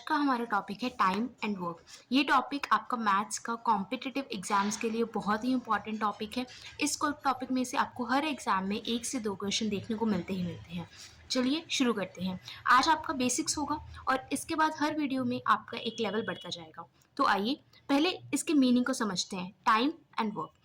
हमारा टॉपिक है टाइम एंड वर्क। ये टॉपिक आपका मैथ्स का कॉम्पिटिटिव एग्जाम्स के लिए बहुत ही इंपॉर्टेंट टॉपिक है। इस टॉपिक में से आपको हर एग्जाम में 1 से 2 क्वेश्चन देखने को मिलते हैं। चलिए शुरू करते हैं। आज आपका बेसिक्स होगा और इसके बाद हर वीडियो में आपका एक लेवल बढ़ता जाएगा। तो आइए पहले इसके मीनिंग को समझते हैं। Time and work.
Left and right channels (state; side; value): identical; both; correlation 1.00